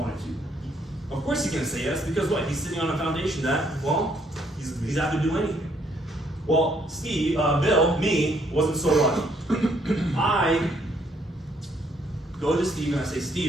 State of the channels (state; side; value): normal; both; correlation 0.69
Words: to? Of course he's gonna say yes, because what? He's sitting on a foundation that, well, he's out to do anything. Well, Steve, Bill, me, wasn't so lucky. I go to Steve and I say,